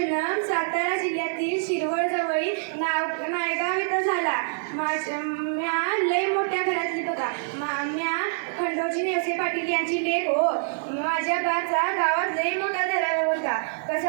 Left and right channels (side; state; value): left; silent; 61 dB below the other